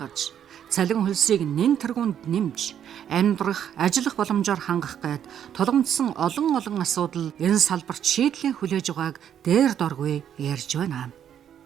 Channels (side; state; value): left; quieter; 9.4 dB